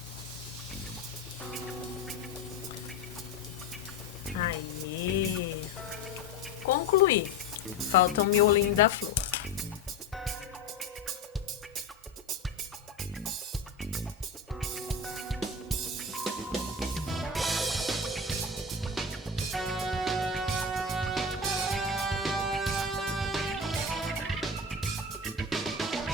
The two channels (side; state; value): right; quieter; 3.4 dB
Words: Aí. Concluí. Falta o miolinho da flor.